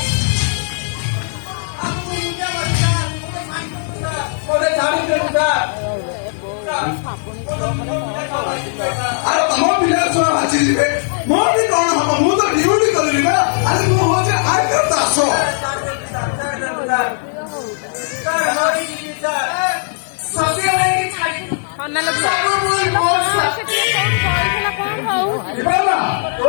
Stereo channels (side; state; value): right; silent; 68 dB below the other